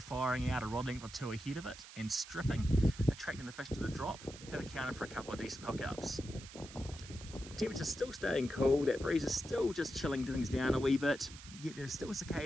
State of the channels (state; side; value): noise; right; hiss, 15 dB below the sound